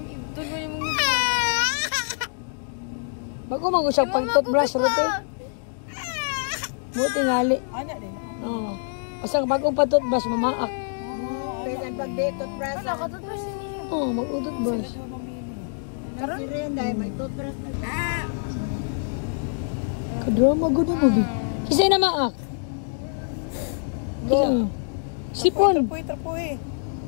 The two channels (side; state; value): right; silent; digital silence